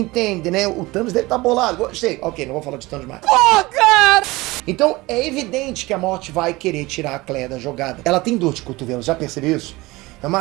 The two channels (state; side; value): quieter; left; 21.3 dB